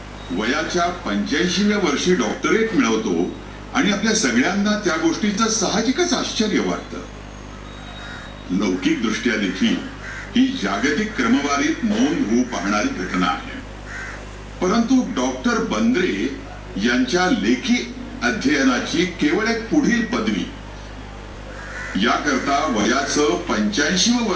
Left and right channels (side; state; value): both; identical; correlation 1.00